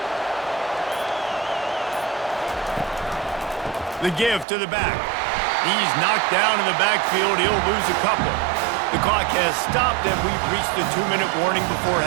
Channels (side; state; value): left; drops out; at 4.5 s